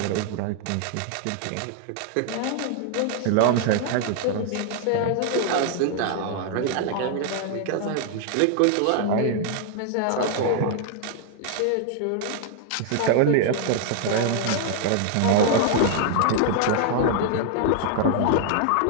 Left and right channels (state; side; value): different; both; correlation 0.00